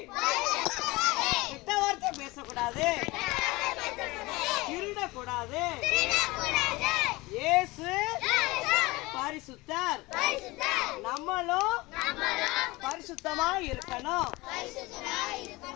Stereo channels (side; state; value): right; quieter; 21.9 dB